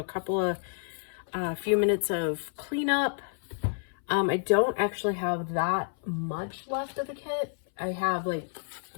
couple of, few minutes of cleanup. I don't actually have that much left of the kit. I have like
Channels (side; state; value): right; silent; 58 dB below the other